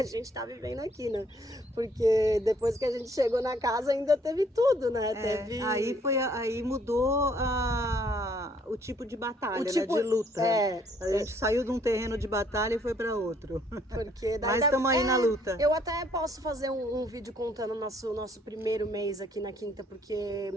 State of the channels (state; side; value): normal; both; correlation 0.64